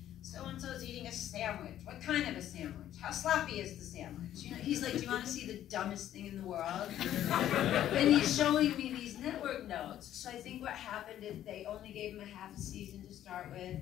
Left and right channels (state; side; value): quieter; right; 11.8 dB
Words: so-and-so's eating a sandwich. What kind of a sandwich? How sloppy is the sandwich? You know, he's like, do you want to see the dumbest thing in the world? And he's showing me these network notes. So I think what happened is they only gave him a half a season to start with,